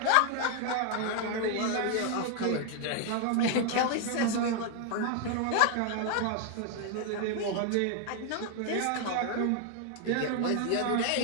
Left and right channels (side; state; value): both; different; correlation 0.01